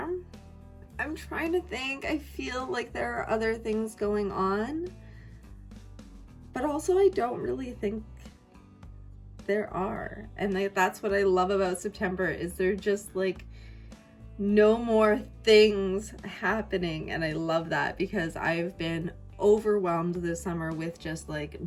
I'm trying to think. I feel like there are other things going on, but also I don't really think there are. And that's what I love about September, is there just like no more things happening. And I love that, because I've been overwhelmed this summer with just like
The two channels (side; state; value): both; identical; correlation 1.00